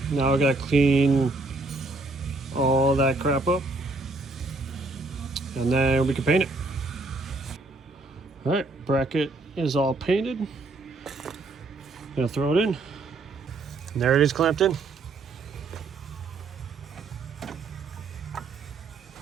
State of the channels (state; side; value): quieter; left; 3.3 dB